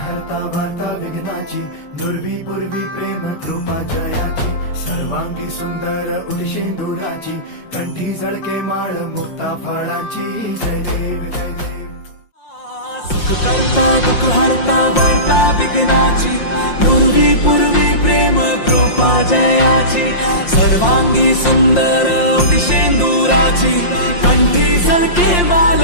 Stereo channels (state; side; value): late; right; 5.7 ms